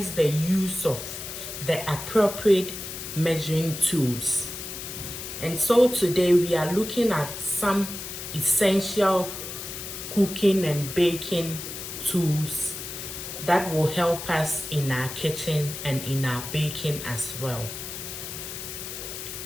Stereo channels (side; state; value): left; noise; hiss, 8 dB below the sound